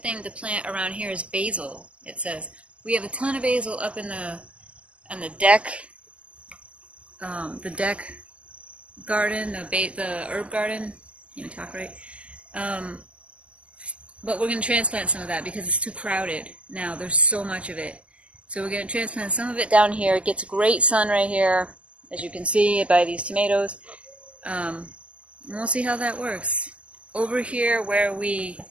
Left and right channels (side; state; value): left; late; 0.059 ms